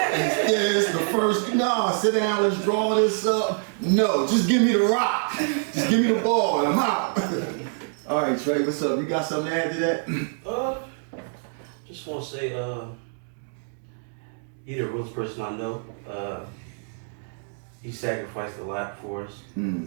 this, the first, no, sit down, let's draw this up. No, just give me the rock. Just give me the ball and I'm out. All right, Trey, what's up? You got something to add to that? Just want to say, you're the realest person I know. He sacrificed a lot for us.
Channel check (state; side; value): silent; left; 61 dB below the other